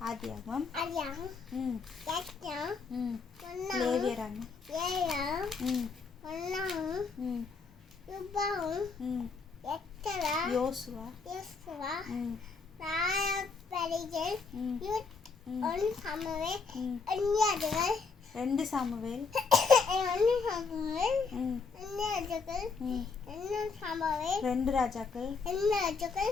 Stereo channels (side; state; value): right; quieter; 4.8 dB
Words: ஆதியாகமம் லேவியராகமம் யோசுவா ரெண்டு சாமுவேல் ரெண்டு ராஜாக்கள்